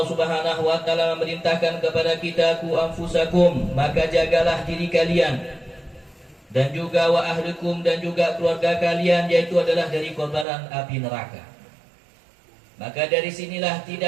Subhanahu wa taala memerintahkan kepada kita, ku anfusakum, maka jagalah diri kalian, dan juga wa ahlikum, dan juga keluarga kalian, yaitu adalah dari kobaran api neraka. Maka dari sinilah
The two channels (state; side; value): drops out; left; at 10.5 s